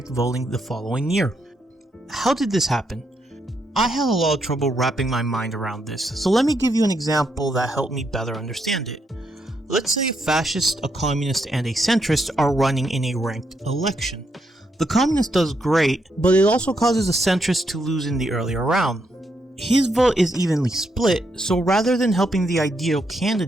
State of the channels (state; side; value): normal; both; correlation 0.79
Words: voting the following year. How did this happen? I had a lot of trouble wrapping my mind around this, so let me give you an example that helped me better understand it. Let's say a fascist, a communist, and a centrist are running in a ranked election. The communist does great, but it also causes the centrist to lose in the earlier round. His vote is evenly split, so rather than helping the ideal